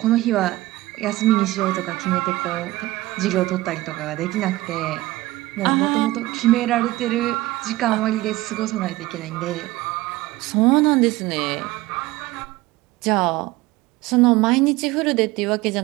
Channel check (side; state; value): left; quieter; 18.3 dB